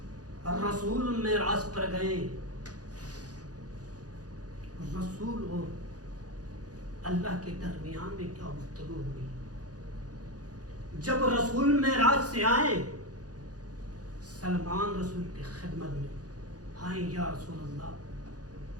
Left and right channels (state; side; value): late; left; 0.68 ms